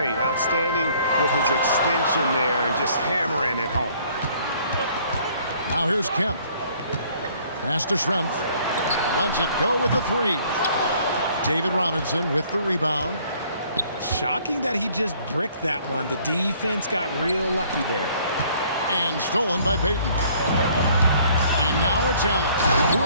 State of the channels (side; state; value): both; inverted; correlation -0.59